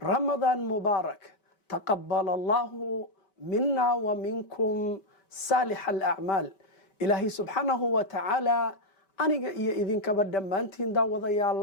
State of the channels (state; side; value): late; right; 5.1 ms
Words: رمضان مبارك تقبل الله منا ومنكم صالح الأعمال إلهي سبحانه وتعالى aniga iyo idinkaba dhammaantiin